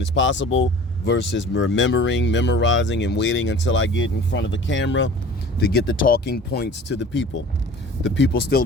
as possible versus memorizing, and waiting until I get in front of the camera to get the talking points to the people. The people still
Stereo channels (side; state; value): both; normal; correlation 0.44